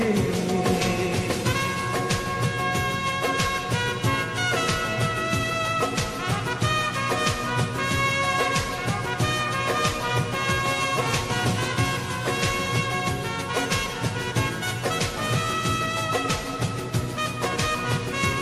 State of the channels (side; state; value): both; identical; correlation 1.00